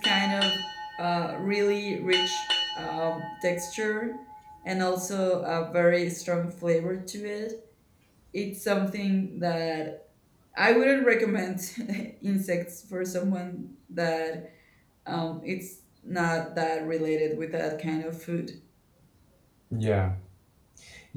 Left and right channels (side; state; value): both; identical; correlation 1.00